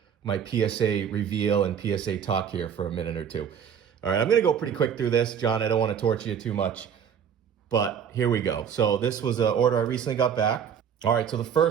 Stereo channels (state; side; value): quieter; left; 8.1 dB